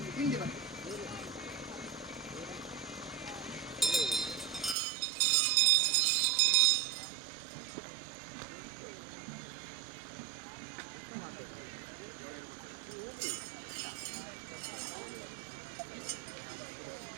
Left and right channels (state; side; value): drops out; left; at 4.8 s